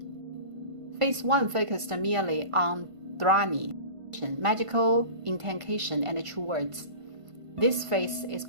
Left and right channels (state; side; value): late; left; 1.5 ms